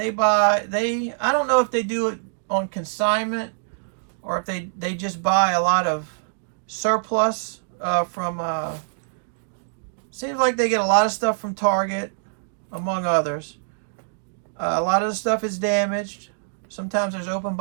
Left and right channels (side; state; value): left; silent; digital silence